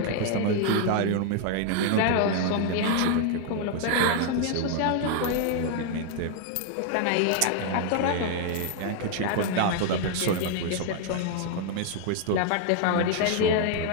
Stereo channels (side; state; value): both; different; correlation 0.00